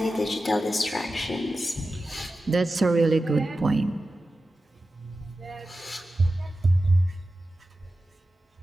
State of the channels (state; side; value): normal; both; correlation 0.93